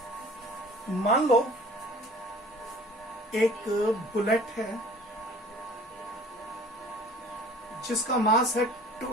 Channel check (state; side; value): normal; both; correlation 0.48